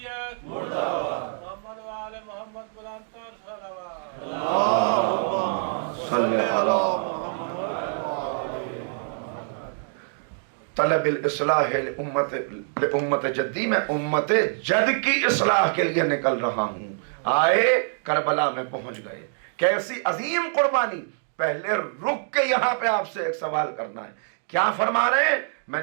طلب الاصلاح لامت جدی، میں امت جد کی اصلاح کے لیے نکل رہا ہوں. آئے کربلا میں پہنچ گئے. کیسی عظیم قربانی. پہلے رک کے یہاں پہ آپ سے ایک سوال کرنا ہے. کیا فرما رہے ہیں؟ میں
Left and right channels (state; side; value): silent; left; digital silence